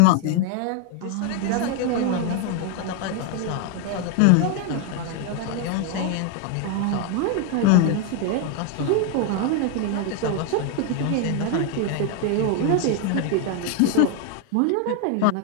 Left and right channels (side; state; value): both; different; correlation 0.01